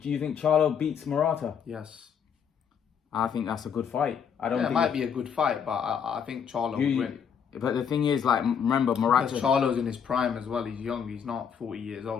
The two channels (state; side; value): quieter; right; 7.4 dB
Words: think Charlo beats Murata? Yes. I think that's a good fight. It might be a good fight, but I think Charlo would win. But the thing is, remember, Murata... Because Charlo's in his prime as well. He's young. He's not 40 years